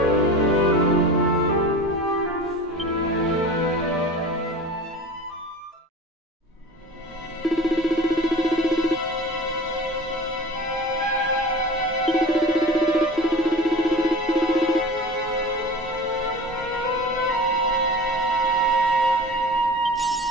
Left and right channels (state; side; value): normal; both; correlation 0.36